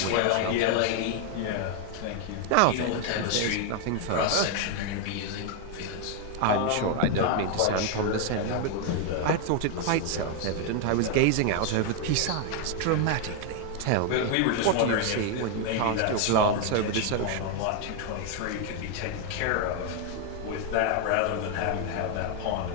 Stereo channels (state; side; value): different; both; correlation 0.01